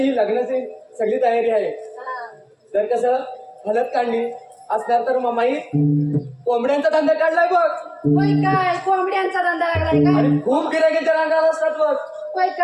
ही लग्नाची सगळी तयारी आहे. तर कसं हलत काढली असणार तर मामाई कोंबड्यांचा धंदा काढलाय बघ. होय काय? कोंबड्यांचा धंदा लागलाय का? आणि खूप गिरायकांच्या रांगा असतात बघ. होय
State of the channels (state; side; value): identical; both; correlation 1.00